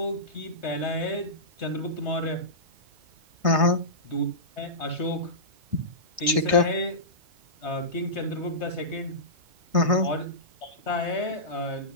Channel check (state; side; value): late; left; 1.6 ms